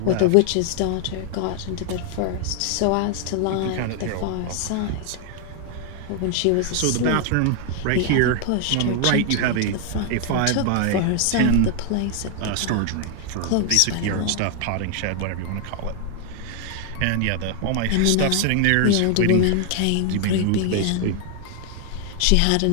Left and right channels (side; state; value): both; different; correlation 0.00